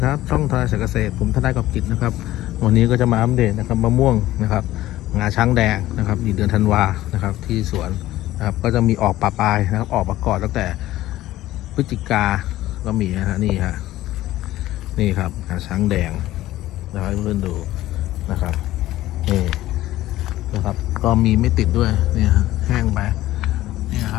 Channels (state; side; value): quieter; right; 15.4 dB